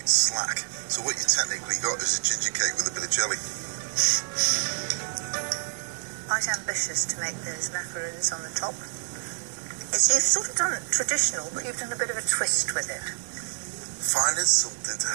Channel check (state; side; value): silent; left; 60 dB below the other